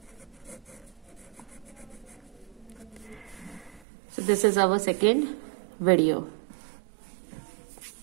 So this is our second video.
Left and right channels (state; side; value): drops out; left; at 3.8 s